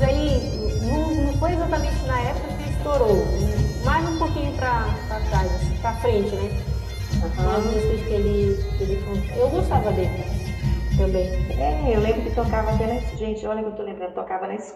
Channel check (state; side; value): identical; both; correlation 1.00